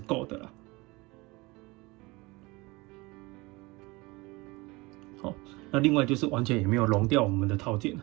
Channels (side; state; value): left; quieter; 23.7 dB